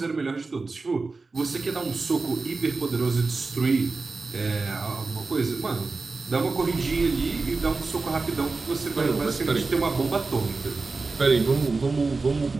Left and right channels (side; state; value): left; quieter; 3.9 dB